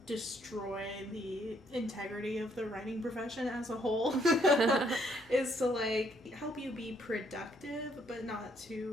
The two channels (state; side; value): noise; left; hum, 28 dB below the sound